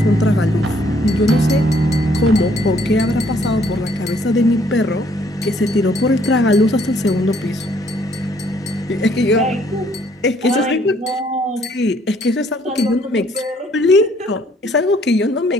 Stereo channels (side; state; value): both; normal; correlation 0.64